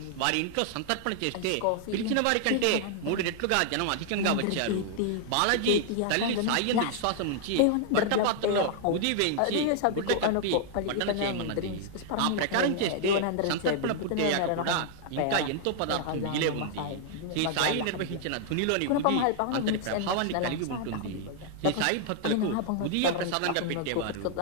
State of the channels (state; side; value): different; both; correlation 0.00